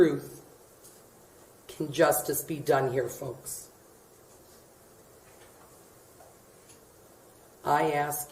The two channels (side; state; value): both; identical; correlation 1.00